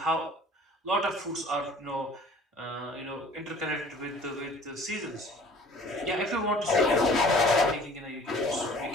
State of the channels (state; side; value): normal; both; correlation 0.49